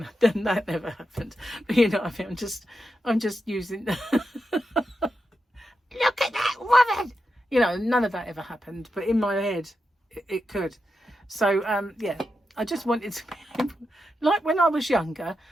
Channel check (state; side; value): normal; both; correlation 0.87